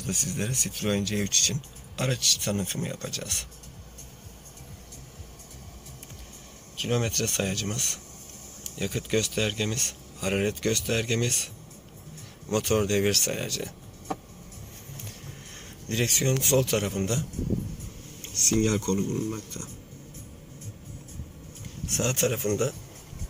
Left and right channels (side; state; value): both; identical; correlation 1.00